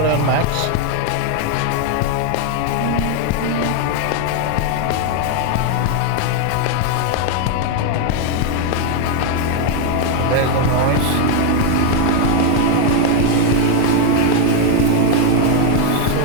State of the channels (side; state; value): both; different; correlation 0.00